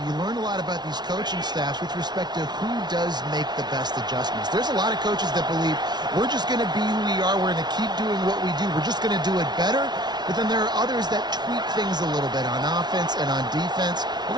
learn a lot about these coaching staffs with respect to who does make the best adjustments. There's a lot of coaches that believe we're just going to be who we are. We're going to keep doing what we do. We're just going to do it better. But then there are others that tweak things a little bit on offense and on defense. We're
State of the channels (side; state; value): left; late; 0.20 ms